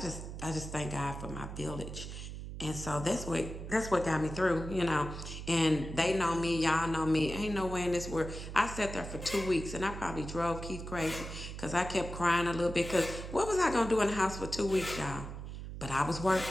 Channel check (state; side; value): noise; right; hum, 9 dB below the sound